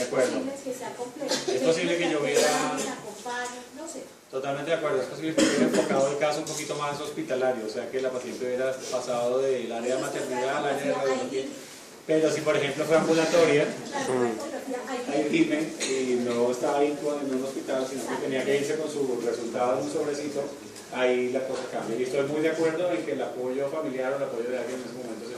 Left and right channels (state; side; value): identical; both; correlation 1.00